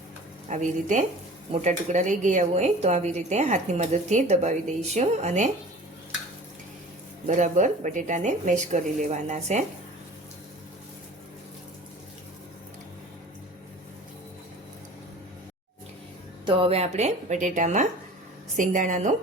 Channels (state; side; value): normal; both; correlation 0.42